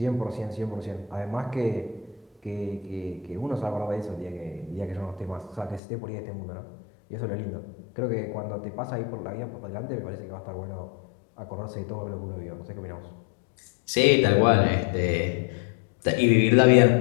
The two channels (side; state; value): right; drops out; at 5.8 s